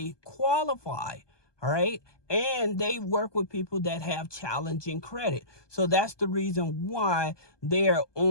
qualify. All right. And they work with people that have challenging credit. So that's the reason why they're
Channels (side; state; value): right; late; 1.2 ms